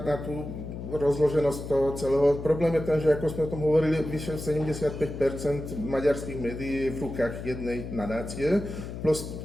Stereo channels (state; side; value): noise; left; hum, 8 dB below the sound